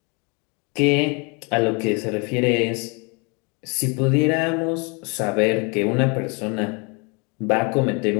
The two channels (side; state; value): right; quieter; 31.7 dB